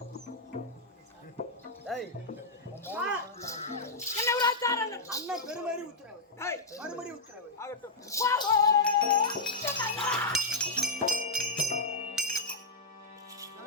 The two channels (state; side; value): quieter; right; 3.0 dB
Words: அண்ணன் பெருமாறி உத்தரவு. மறுபடி உத்தரவு ஆகட்டும்.